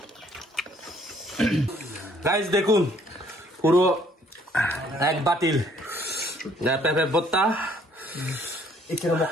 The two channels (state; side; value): normal; both; correlation 0.62